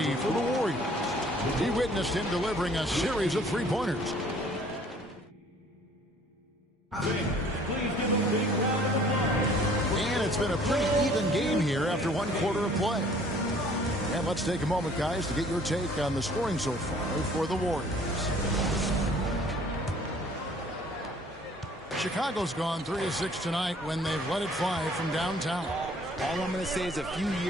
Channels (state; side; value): normal; both; correlation 0.56